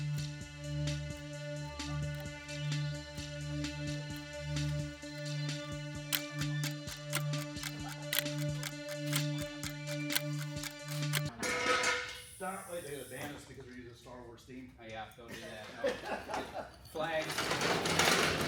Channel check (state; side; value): identical; both; correlation 1.00